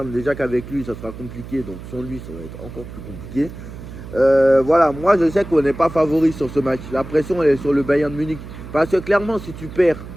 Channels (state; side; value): noise; right; hum, 13 dB below the sound